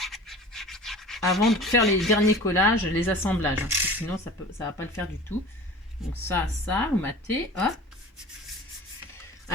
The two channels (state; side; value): normal; both; correlation 0.40